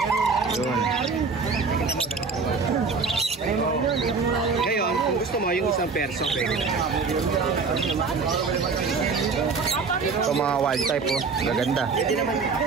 Yun. Ngayon, kung gusto mo yung isang perso, pwede na. Ito mga wild type oh. Gaganda. Pwede naman.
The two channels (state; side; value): quieter; left; 4.8 dB